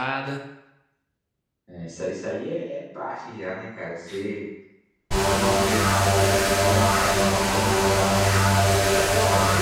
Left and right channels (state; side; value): identical; both; correlation 1.00